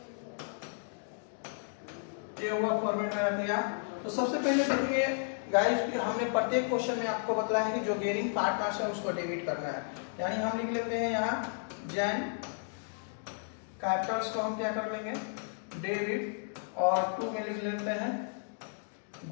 ये हुआ फॉर्मेट मेरा तैयार। तो सबसे पहले देखिए गाइस कि हमने प्रत्येक क्वेश्चन में आपको बताया है कि जो गेनिंग पार्टनर्स है उसको डेबिट करना है, यानी हम लिख लेते हैं यहाँ जैन कैपिटल्स को हम क्या कर लेंगे, डेबिट, और 2 में लिख लेते हैं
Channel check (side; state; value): right; silent; digital silence